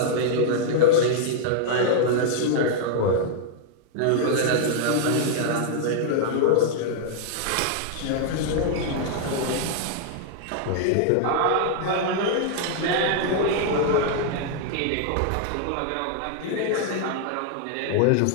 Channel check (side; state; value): both; different; correlation -0.01